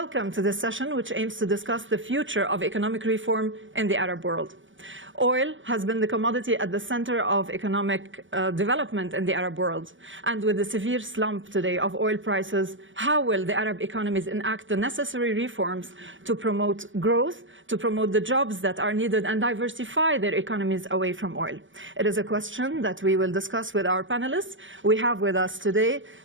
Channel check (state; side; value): late; left; 0.56 ms